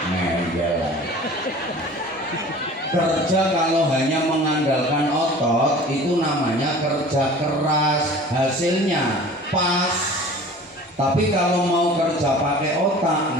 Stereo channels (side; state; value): both; normal; correlation 0.43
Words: Ngel. Kerja kalau hanya mengandalkan otot itu namanya kerja keras, hasilnya pas. Tapi kalau mau kerja pakai otak